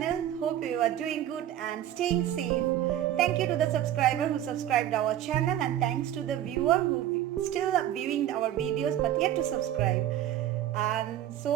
Hope you are doing good and staying safe. Thank you to the subscriber who subscribed our channel, and thanks to the viewer who still are viewing our videos but yet to subscribe. And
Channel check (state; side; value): quieter; left; 11.9 dB